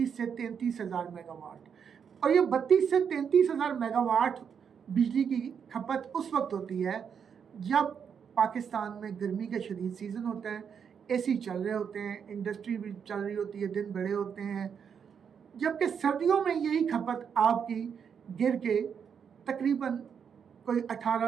سے 33,000 میگا واٹ، اور یہ 32 سے 33,000 میگا واٹ بجلی کی کھپت اس وقت ہوتی ہے جب پاکستان میں گرمی کا شدید سیزن ہوتا ہے، AC چل رہے ہوتے ہیں، انڈسٹری بھی چل رہی ہوتی ہے، دن بڑے ہوتے ہیں، جبکہ سردیوں میں یہی کھپت آپ کی گر کے تقریباً کوئی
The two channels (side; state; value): left; quieter; 7.2 dB